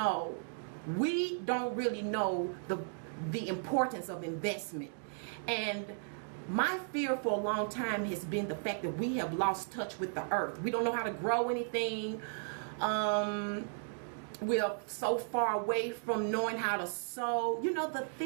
We don't really know the importance of investment. And my fear for a long time has been the fact that we have lost touch with the earth. We don't know how to grow anything. We are so far away from knowing how to sow. You know, the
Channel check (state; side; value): silent; left; digital silence